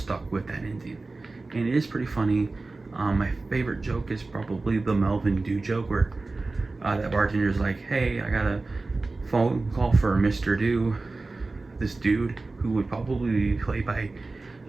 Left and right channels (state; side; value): quieter; left; 3.4 dB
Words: with that ending. And it is pretty funny. My favorite joke is probably the Melvin Dew joke, where that bartender's like, "Hey, I got a phone call for Mr. Dew." This dude, who would probably be played by